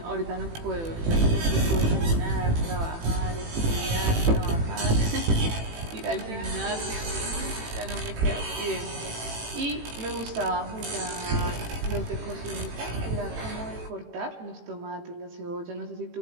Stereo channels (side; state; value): left; late; 18 ms